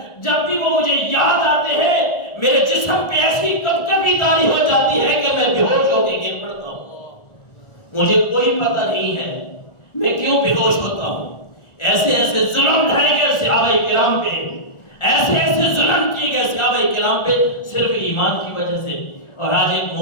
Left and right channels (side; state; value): right; late; 1.4 ms